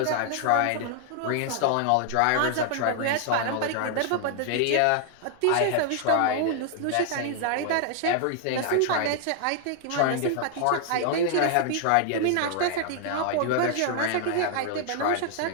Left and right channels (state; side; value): different; both; correlation 0.00